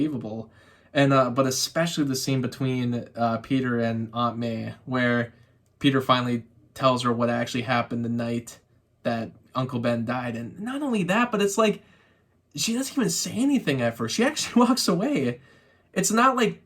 And but especially the scene between Peter and Aunt May, where Peter finally tells her what actually happened the night that Uncle Ben died. And not only that, but it's like, she doesn't even say anything at first. She actually walks away. It's not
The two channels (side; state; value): both; identical; correlation 1.00